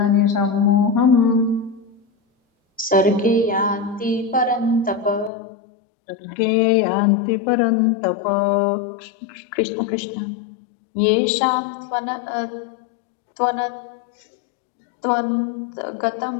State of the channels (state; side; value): drops out; right; at 5.3 s